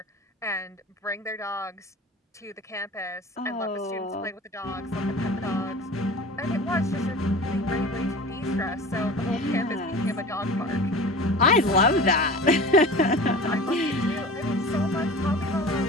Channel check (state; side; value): normal; both; correlation 0.37